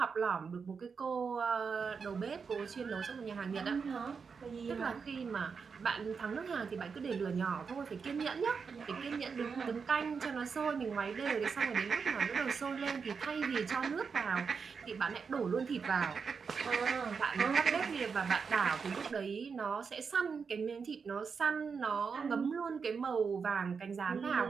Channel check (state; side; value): quieter; left; 5.6 dB